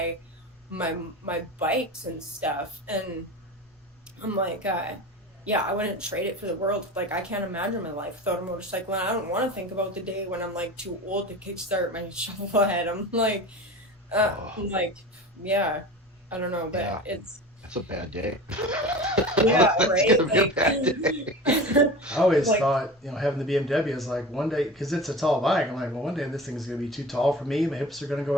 my bikes and stuff. And I'm like, yeah, I wouldn't trade it for the world. Like, I can't imagine my life without a motorcycle, and I don't want to think about the day when I'm like too old to kickstart my shovel head. I'm like, yeah, I don't know, but Yeah, it's that's a bad day. yeah, That's right. gonna be a bad day. I always Like, thought, having the BMW is like one day, because it's a tall bike. I'm like, well, one day this thing is going to be too tall for me. My hips are going to go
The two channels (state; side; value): normal; both; correlation 0.33